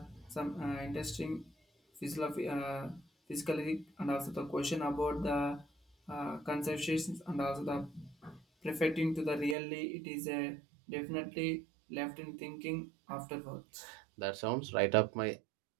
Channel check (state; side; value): drops out; left; at 9.6 s